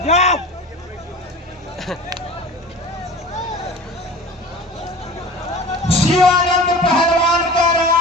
शिवानंद पहलवान कह रहा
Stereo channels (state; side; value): normal; both; correlation 0.38